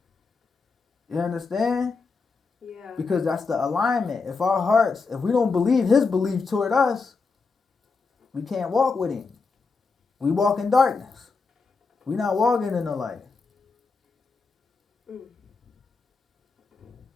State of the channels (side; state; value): right; quieter; 4.5 dB